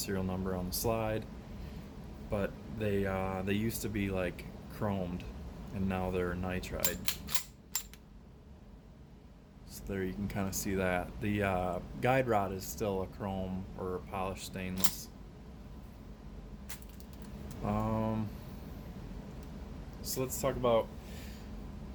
number on the slide, but they used to be like chromed, and now they're nitride. So there you can kind of see that. The guide rod is still a chrome or a polished stainless. So let's talk about,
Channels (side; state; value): both; identical; correlation 1.00